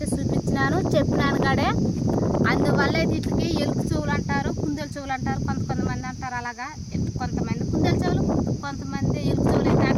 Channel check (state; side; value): identical; both; correlation 1.00